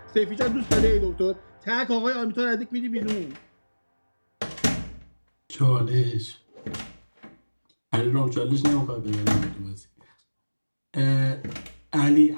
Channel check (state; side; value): inverted; both; correlation -1.00